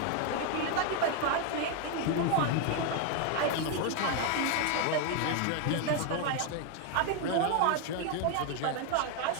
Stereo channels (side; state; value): both; different; correlation 0.01